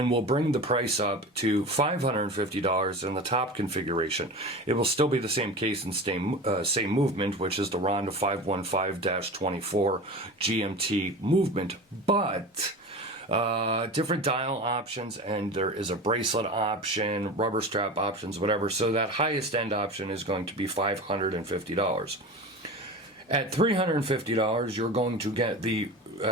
we'll bring the price up to $550 in the top configuration. It will still be the same case and same movement, which is the Ronda 515-24 GMT movement, but different dial options, and there is a bracelet option, rubber strap options, whatever. So that highest end option is going to be $550. At $350, you're going to get the,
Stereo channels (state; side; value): normal; both; correlation 0.31